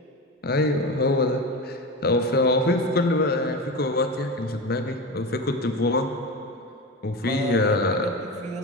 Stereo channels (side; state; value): both; normal; correlation 0.24